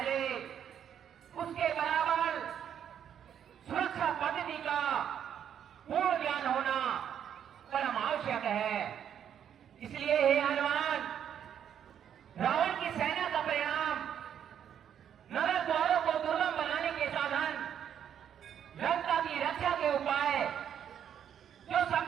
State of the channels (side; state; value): left; quieter; 9.1 dB